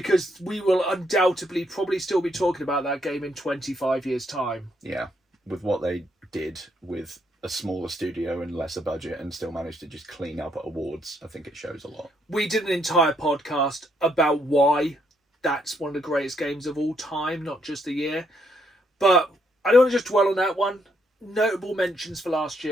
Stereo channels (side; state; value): both; normal; correlation 0.74